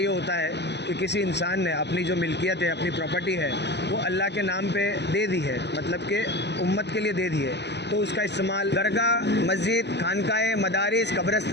ये होता है कि किसी इंसान ने अपनी जो मिल्कियत है, अपनी प्रॉपर्टी है, वो अल्लाह के नाम पे दे दी है, मतलब कि उम्मत के लिए दे दी है। तो उसका इस्तेमाल दरगाह, मस्जिद, खानकाएँ, मदारिस,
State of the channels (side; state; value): right; late; 0.50 ms